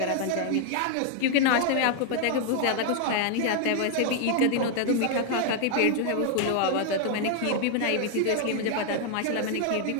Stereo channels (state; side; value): different; both; correlation 0.00